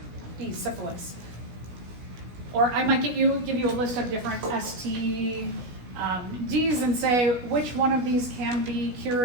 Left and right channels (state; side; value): late; left; 16 ms